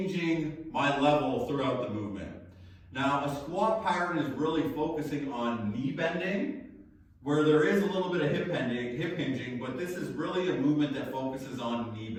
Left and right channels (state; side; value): identical; both; correlation 1.00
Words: my level throughout the movement. Now, a squat pattern is really focusing on knee bending, where there is a little bit of hip hinging, but this is really a movement that focuses on knee